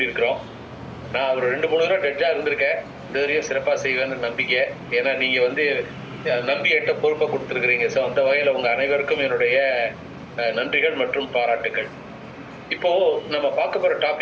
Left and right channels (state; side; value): identical; both; correlation 1.00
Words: நான் ஒரு 2-3 தடவை டெட்ஜா இருந்திருக்கேன். இந்த வரையும் சிறப்பாக செய்வேன்னு நம்பிக்கை. ஏன்னா நீங்க நம்பி என்கிட்ட பொறுப்பை கொடுத்துருக்குறீங்க. ஸோ அந்த வகையில் உங்க அனைவருக்கும் என்னுடைய நன்றிகள் மற்றும் பாராட்டுகள். இப்போ நம்ம பார்க்க போற